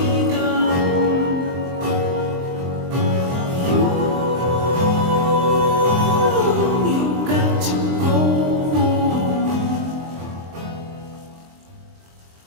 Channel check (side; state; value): left; late; 23 ms